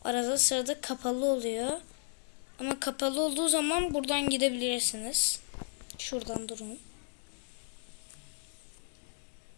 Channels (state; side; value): silent; right; digital silence